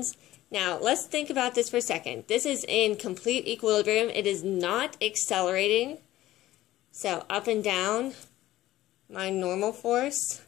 Now, let's think about this for a second. This is in complete equilibrium. It is not accelerating. So up and down, my normal force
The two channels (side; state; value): right; quieter; 15.2 dB